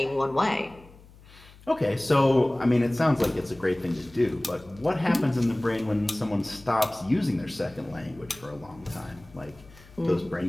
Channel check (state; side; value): noise; left; hum, 23 dB below the sound